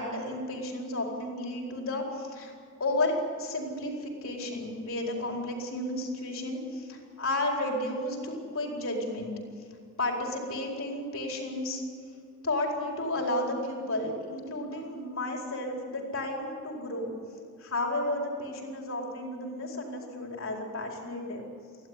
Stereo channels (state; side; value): normal; both; correlation -0.16